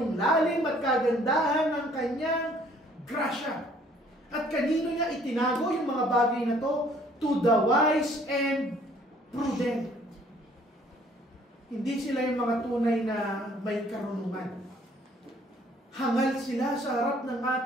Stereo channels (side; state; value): both; normal; correlation 0.59